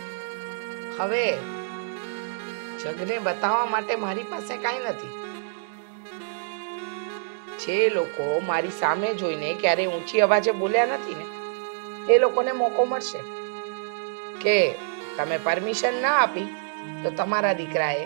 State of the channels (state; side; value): silent; left; digital silence